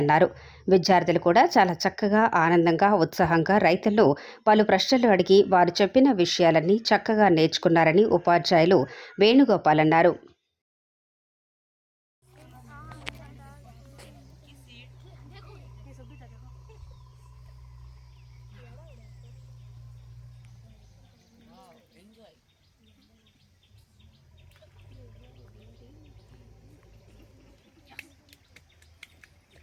అన్నారు. విద్యార్థులు కూడా చాలా చక్కగా, ఆనందంగా, ఉత్సాహంగా రైతులు పలు ప్రశ్నలు అడిగి వారు చెప్పిన విషయాలన్నీ చక్కగా నేర్చుకున్నారని ఉపాధ్యాయులు వేణుగోపాల్ అన్నారు.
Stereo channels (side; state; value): both; identical; correlation 1.00